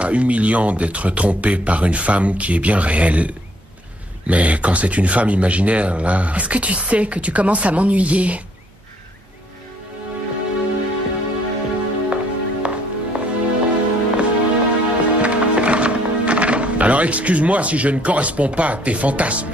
humiliant d'être trompé par une femme qui est bien réelle. Mais quand c'est une femme imaginaire, là... Est-ce que tu sais que tu commences à m'ennuyer? Alors excuse-moi si je ne corresponds pas à tes fantasmes.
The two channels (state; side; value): normal; both; correlation 0.65